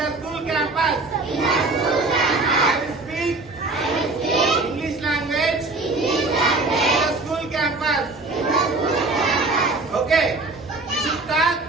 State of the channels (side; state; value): left; quieter; 3.4 dB